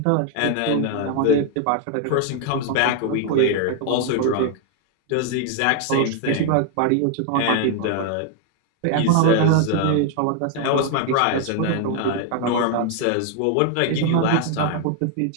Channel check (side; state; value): both; different; correlation 0.00